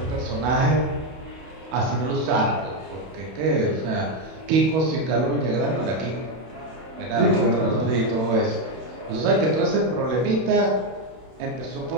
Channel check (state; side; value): late; left; 31 ms